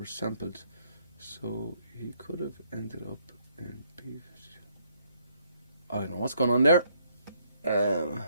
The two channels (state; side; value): inverted; both; correlation -0.70